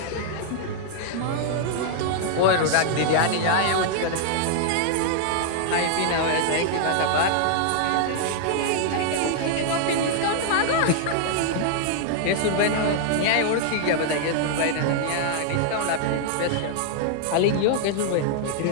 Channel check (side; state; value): both; different; correlation -0.01